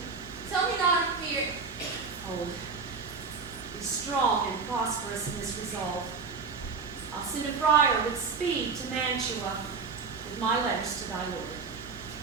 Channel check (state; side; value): quieter; left; 5.0 dB